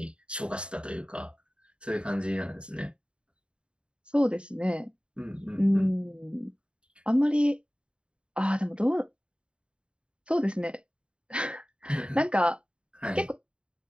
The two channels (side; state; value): left; late; 0.055 ms